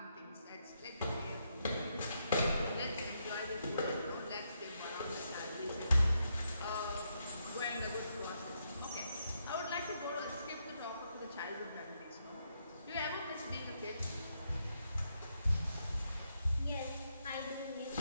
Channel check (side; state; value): both; inverted; correlation -0.79